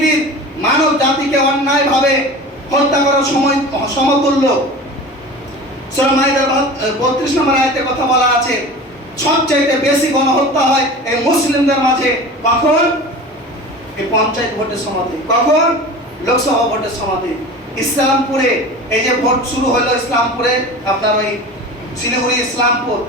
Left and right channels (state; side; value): normal; both; correlation 0.35